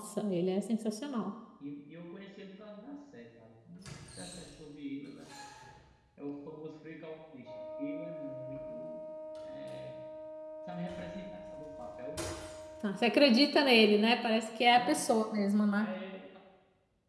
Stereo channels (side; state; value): both; identical; correlation 1.00